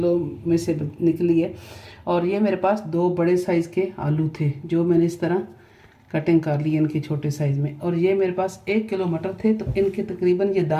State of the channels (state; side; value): identical; both; correlation 1.00